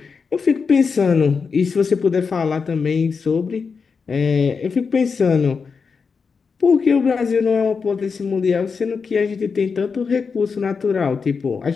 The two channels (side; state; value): right; quieter; 5.3 dB